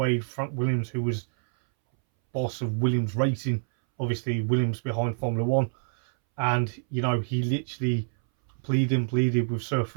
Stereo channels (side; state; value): left; silent; 60 dB below the other